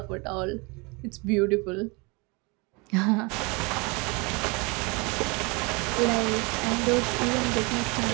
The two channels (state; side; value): quieter; left; 28.4 dB